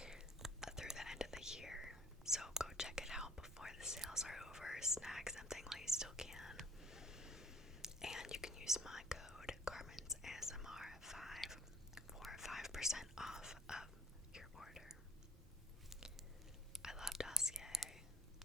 through the end of the year. So go check it out before the sales are over. Snag something while you still can. And you can use my code Carmen's ASMR5 for 5% off of your order. I love Dossier,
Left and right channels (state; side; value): normal; both; correlation 0.53